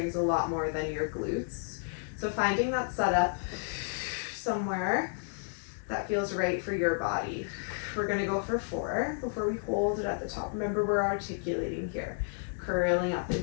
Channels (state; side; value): silent; right; digital silence